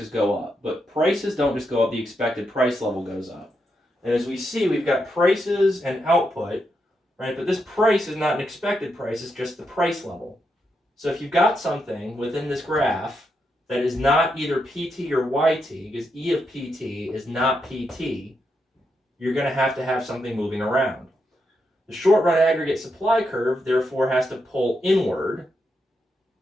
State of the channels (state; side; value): normal; both; correlation 0.83